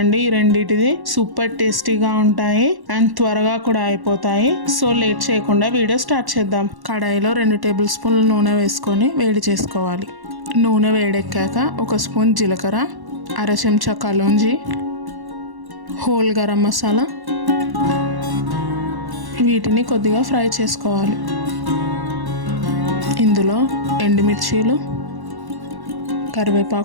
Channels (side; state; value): left; late; 1.1 ms